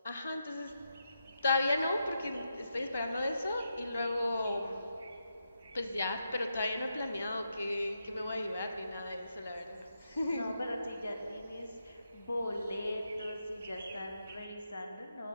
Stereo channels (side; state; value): both; inverted; correlation -0.85